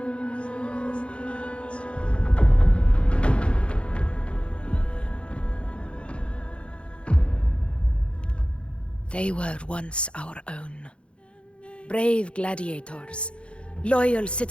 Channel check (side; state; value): right; late; 0.058 ms